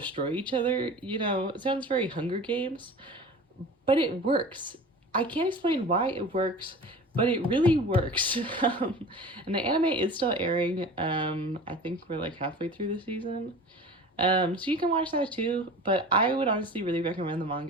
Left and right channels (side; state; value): both; normal; correlation 0.38